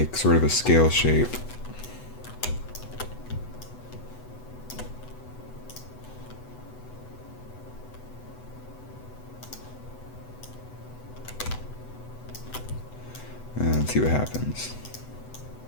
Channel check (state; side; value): late; right; 8.0 ms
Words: sort of a scale shape. And see what happens.